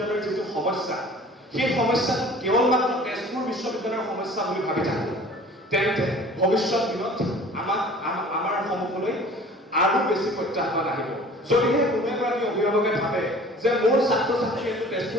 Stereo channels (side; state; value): both; normal; correlation 0.47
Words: যিটো সমস্যা, সেই সমস্যাটো কেৱল মাত্ৰ তেজপুৰ বিশ্ববিদ্যালয়ৰ সমস্যা বুলি ভাবি থাকোঁ, তেন্তে ভৱিষ্যত দিনত আমাৰ সন্মুখলৈ আৰু বেছি প্ৰত্যাহ্বান আহিব। যদিহে কোনো এগৰাকী অভিভাৱকে ভাবে যে মোৰ ছাত্ৰ ছাত্ৰীয়ে